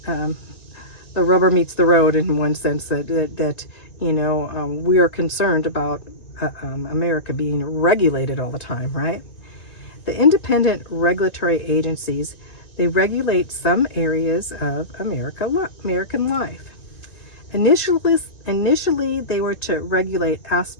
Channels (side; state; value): right; late; 2.2 ms